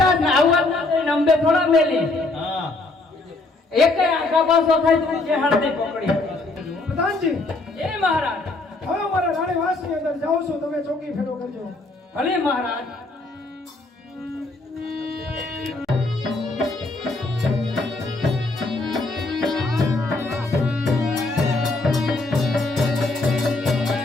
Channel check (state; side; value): quieter; right; 3.2 dB